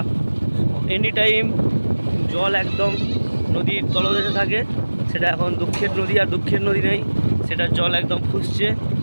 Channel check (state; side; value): inverted; both; correlation -1.00